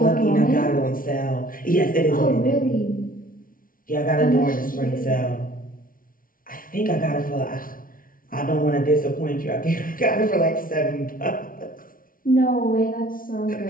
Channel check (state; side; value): late; right; 0.41 ms